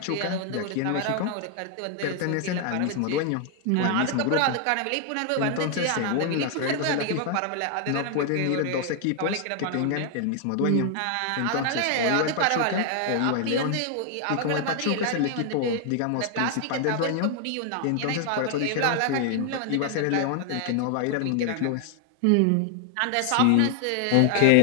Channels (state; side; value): different; both; correlation 0.00